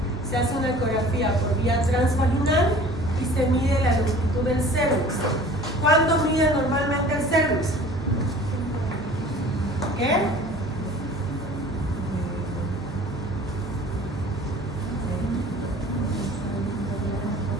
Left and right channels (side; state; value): both; normal; correlation 0.46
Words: Se hace una ecografía por vía transvaginal y se mide la longitud del cervix. ¿Cuánto mide normalmente el cervix? ¿Qué?